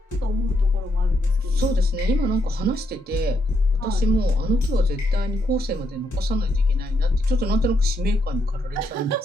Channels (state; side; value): normal; both; correlation 0.77